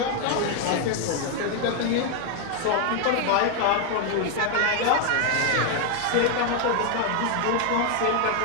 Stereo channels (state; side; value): different; both; correlation 0.00